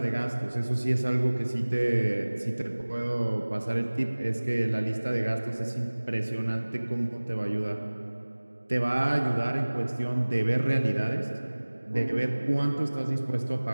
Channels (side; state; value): both; inverted; correlation -1.00